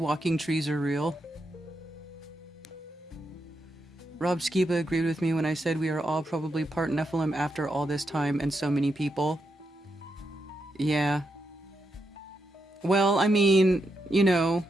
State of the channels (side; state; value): both; normal; correlation 0.83